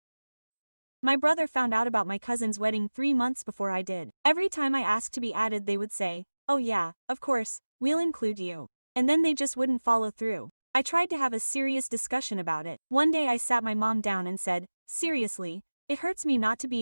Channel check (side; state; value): both; inverted; correlation -1.00